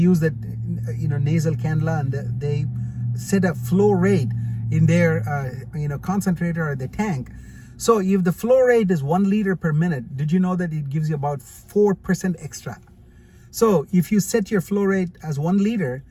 that nasal cannula, and they set a flow rate in their concentrator or the tank. So if the flow rate is 1 liter per minute, did you know that it gives you about 4% extra? So if you set your flow rate as 1 liter,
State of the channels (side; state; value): both; identical; correlation 1.00